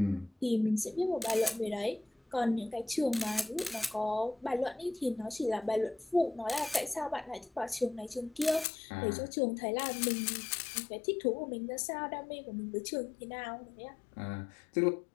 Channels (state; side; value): drops out; right; at 8.7 s